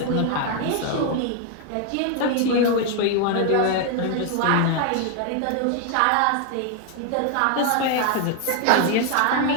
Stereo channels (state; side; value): different; both; correlation 0.01